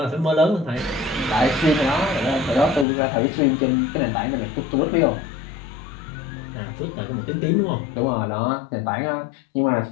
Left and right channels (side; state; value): right; drops out; at 2.9 s